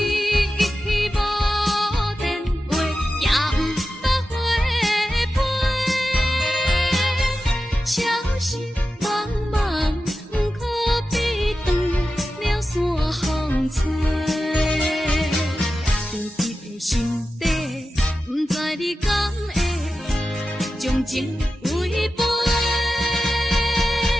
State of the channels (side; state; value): both; normal; correlation 0.92